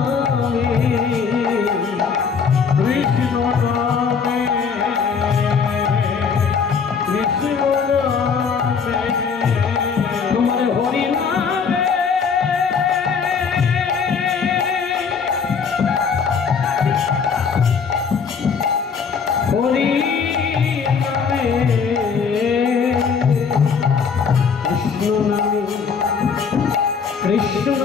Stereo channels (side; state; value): right; quieter; 6.0 dB